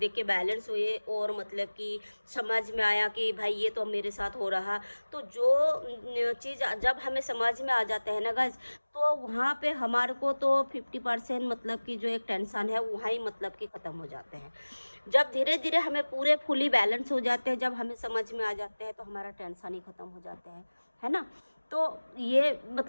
के बैलेंस हुए, और मतलब कि समझ में आया कि भाई ये तो मेरे साथ हो रहा। तो जो चीज़ जब हमें समझ में आ जाता है ना गाइस, तो वहाँ पे हमारे को तो 50% मतलब कि जो एक टेंशन है वहाँ ही मतलब कि ख़त्म हो जाते हैं। जब धीरे धीरे हमें पूरे फुली बैलेंस हो जाते हैं, जब हमें समझ में आ जाते हैं, तो हमारा टेंशन ही ख़त्म हो जाता है ना। तो ये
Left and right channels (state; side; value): inverted; both; correlation -1.00